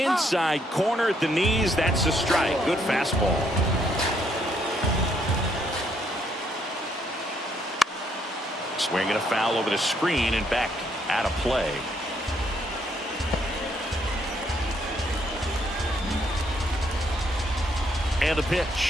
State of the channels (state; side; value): normal; both; correlation 0.71